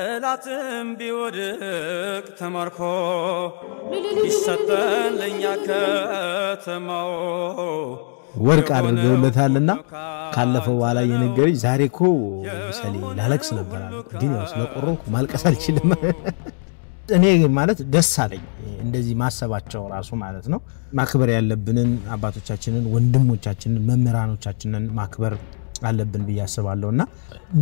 ቢወድቅ ተማርኮ ይሰጠን ለኛ ከተማው ወርቅ አድርገውለታልና ካለፈው በኋላ የነገረኝ ዛሬ እኮ ሰሊ ላለቅስ ነበር አለ ግን ያው ስለቆረኩ ማልቀስ አልችልም እኔ ማለት ደስ አለኝ እንደዚህ ማሰባቸው ራሱ ማለት ነው ማክበር ያለብንን አባቶቻችንን ወንድሞቻችንን መምህራኖቻችንን ማክበር አለብን በያስባለውና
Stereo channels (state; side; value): silent; right; 65 dB below the other